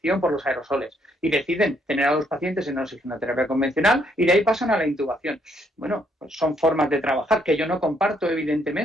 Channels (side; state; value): both; normal; correlation 0.71